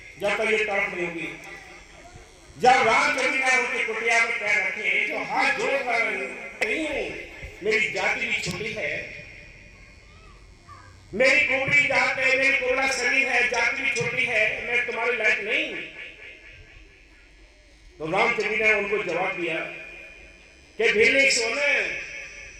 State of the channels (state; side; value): identical; both; correlation 1.00